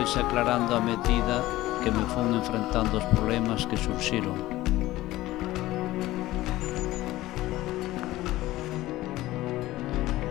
aclarando a medida que me fun enfrentando os problemas que surxiron.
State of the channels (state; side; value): quieter; right; 16.9 dB